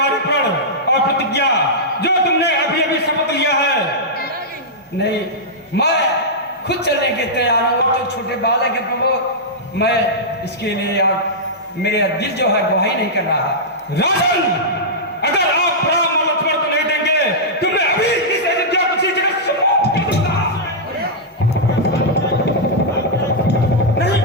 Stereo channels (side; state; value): both; normal; correlation -0.10